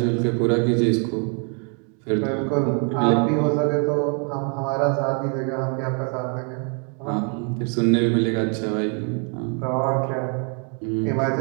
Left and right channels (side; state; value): left; quieter; 39.3 dB